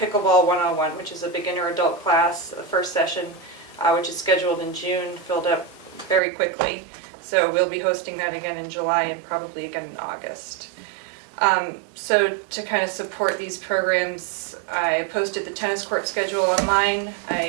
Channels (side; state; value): left; drops out; at 6.2 s